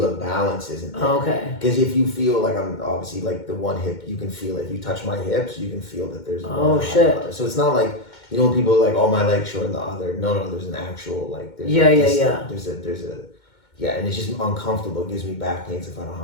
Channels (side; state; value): right; late; 2.1 ms